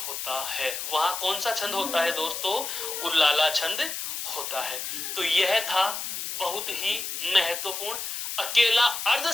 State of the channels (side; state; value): left; noise; hiss, 5 dB below the sound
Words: है। वहां कौन सा छंद होता है दोस्तों? उल्लाला छंद होता है। तो यह था बहुत ही महत्वपूर्ण अकेला